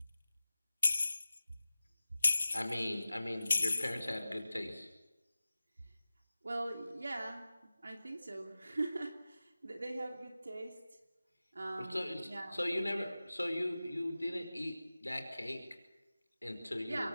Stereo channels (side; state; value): both; inverted; correlation -0.96